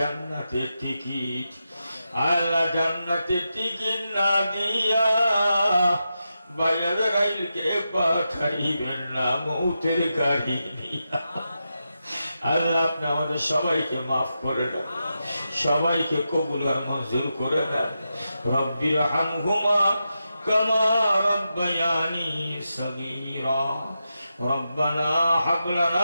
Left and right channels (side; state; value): both; inverted; correlation -0.88